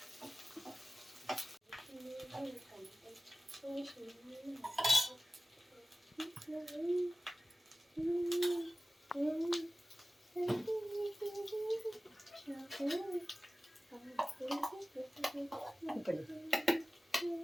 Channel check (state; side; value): normal; both; correlation 0.96